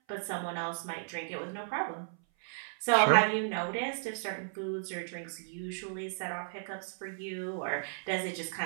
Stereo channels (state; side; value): silent; left; 55 dB below the other